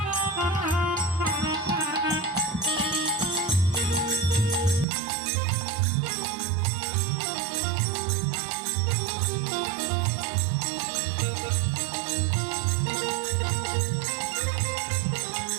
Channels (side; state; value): left; drops out; at 4.9 s